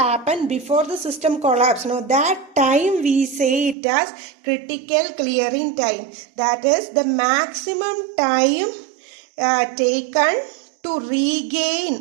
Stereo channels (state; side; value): drops out; left; at 3.8 s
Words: before the system collapse. Now that time we say it as critical clearing time. That is the maximum time taken to